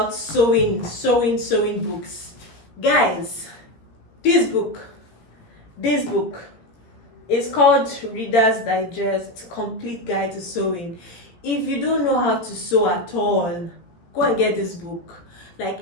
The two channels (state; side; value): late; right; 17 ms